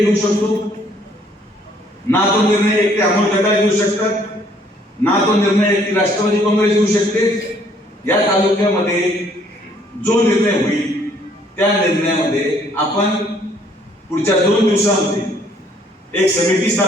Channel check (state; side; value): normal; both; correlation 0.63